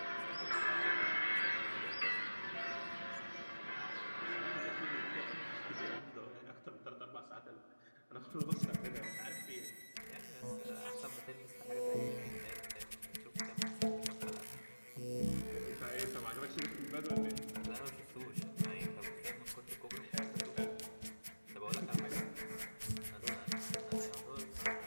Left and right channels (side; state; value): both; inverted; correlation -1.00